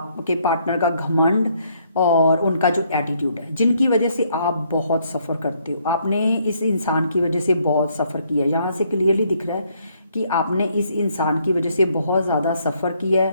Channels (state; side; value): inverted; both; correlation -0.69